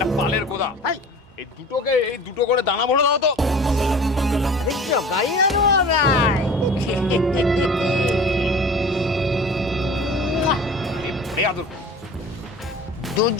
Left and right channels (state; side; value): normal; both; correlation 0.41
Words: পালের গোদা। এই দুটো করে দানা ভরে দাও তো। দেখছো গাড়ি আনো ভাই।